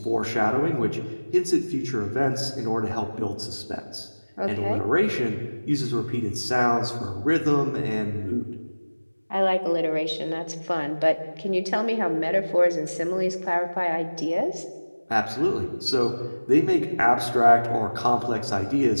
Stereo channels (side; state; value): both; inverted; correlation -1.00